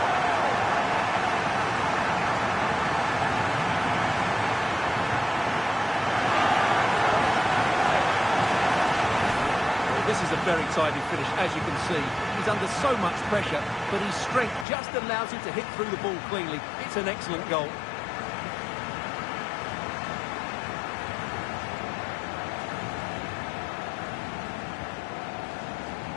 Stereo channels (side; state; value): right; drops out; at 14.7 s